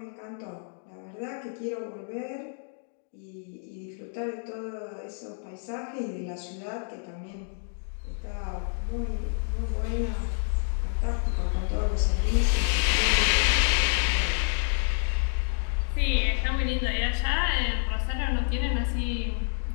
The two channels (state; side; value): silent; right; digital silence